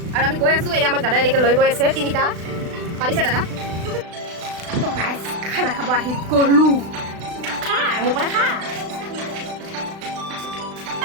আৰু আমি গৈ আছোঁ। এই আমাক দাদাই এনেকৈ লৈ গৈ আছে তিনিটা। পাৰিছে দাদা? তো গাইজ খানা খাব আহি গ'লোঁ। খা মোৰ পৰা খা।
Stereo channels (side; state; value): left; late; 36 ms